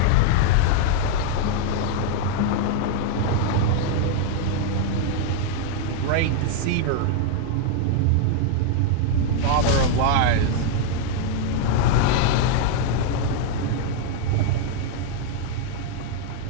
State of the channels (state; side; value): different; both; correlation 0.00